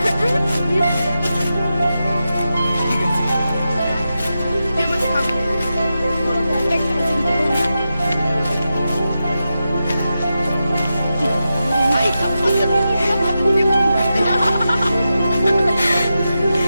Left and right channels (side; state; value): both; inverted; correlation -0.90